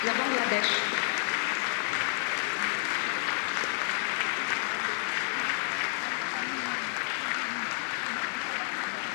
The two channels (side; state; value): right; silent; 58 dB below the other